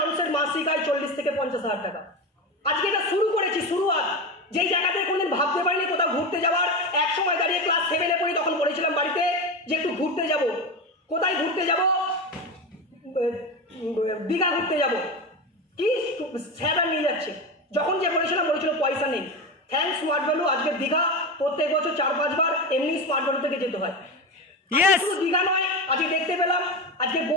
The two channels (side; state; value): both; normal; correlation 0.20